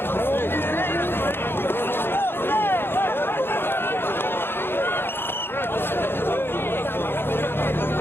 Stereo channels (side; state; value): right; late; 0.11 ms